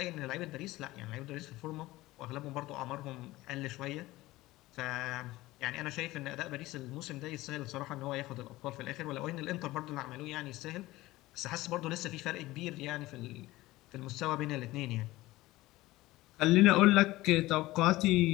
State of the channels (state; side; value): quieter; right; 18.2 dB